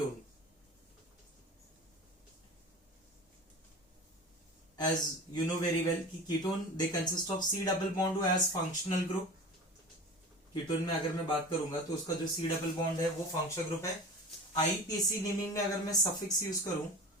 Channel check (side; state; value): both; normal; correlation 0.35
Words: As you know very well कि ketone they consist of C double bond as functional group. Ketone में अगर मैं बात करूंगा तो उसका जो सी डबल बॉन्ड है वो फंक्शनल ग्रुप है. आईपीसी नेमिंग में अगर मैं सफिक्स यूज करूं